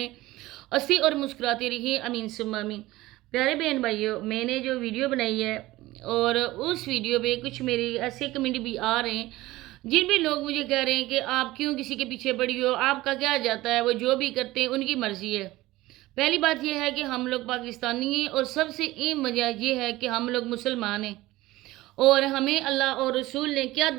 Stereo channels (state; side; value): quieter; left; 18.0 dB